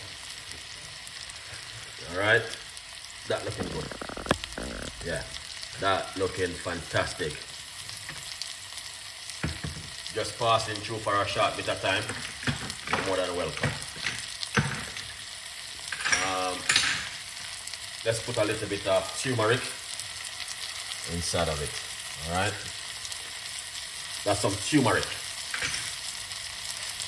All right, that looking good. Yeah, that looking fantastic. Just passing through for a short bit of time. You're more than welcome. Let's put a little bit of turmeric inside of it. All right, that's some turmeric.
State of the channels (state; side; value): identical; both; correlation 1.00